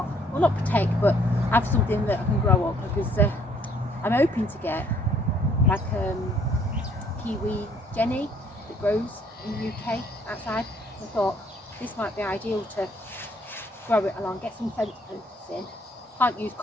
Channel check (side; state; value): both; normal; correlation 0.63